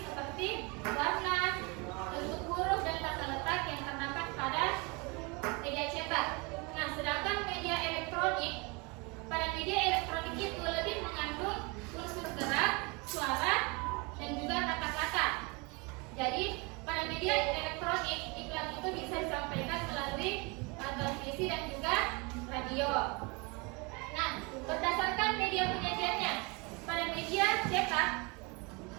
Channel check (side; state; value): left; quieter; 28.8 dB